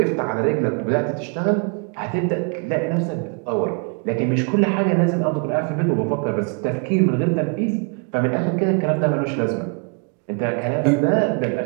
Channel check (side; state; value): left; quieter; 38.2 dB